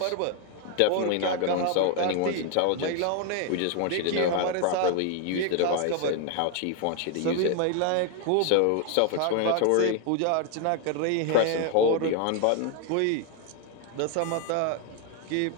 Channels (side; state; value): both; different; correlation 0.01